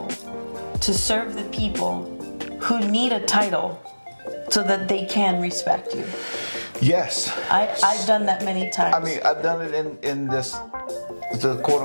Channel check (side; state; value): both; inverted; correlation -1.00